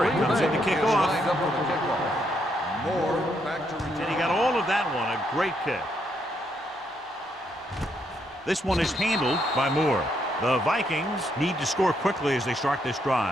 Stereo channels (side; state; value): both; normal; correlation 0.76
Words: comes in to kick off. Moore back to return. And he got all of that one. A great kick. This one is handled by Moore. The Vikings need to score quickly as they start this